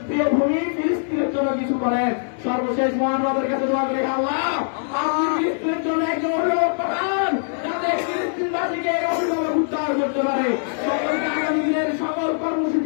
প্রিয় ভূমি ফিলিস্তিনের জন্য কিছু করেন। সর্বশেষ মহান রবের কাছে দোয়া করে, আল্লাহ আপনি ফিলিস্তিনের জন্য একজন অভিভাবক পাঠান, যাতে ফিলিস্তিনবাসীকে এই অভিভাবক উদ্ধার করতে পারে। সকলকে আগামী দিনের সকল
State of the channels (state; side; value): silent; right; digital silence